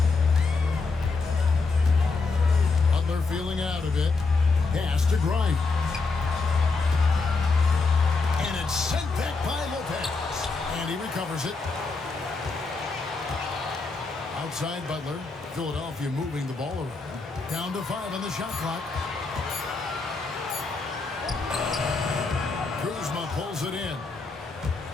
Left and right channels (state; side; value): quieter; right; 4.1 dB